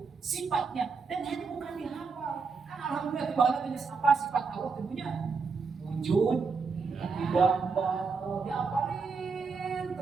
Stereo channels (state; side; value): quieter; left; 4.9 dB